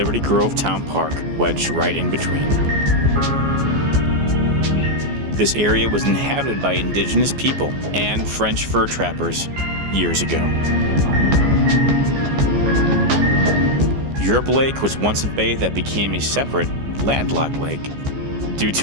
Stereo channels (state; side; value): late; left; 14 ms